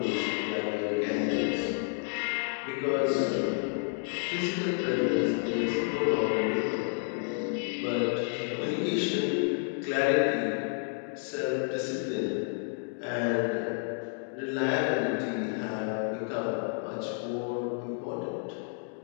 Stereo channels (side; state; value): right; silent; 58 dB below the other